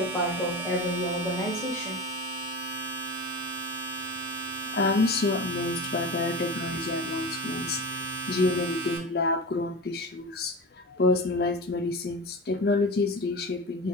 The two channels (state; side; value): normal; both; correlation 0.27